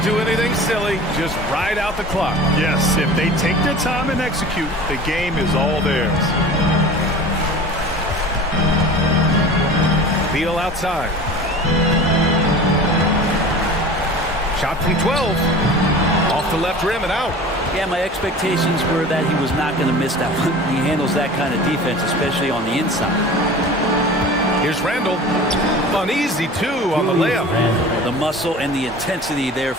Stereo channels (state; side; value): normal; both; correlation 0.39